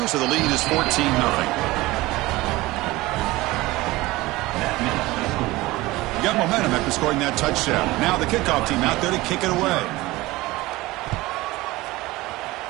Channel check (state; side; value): quieter; left; 19.7 dB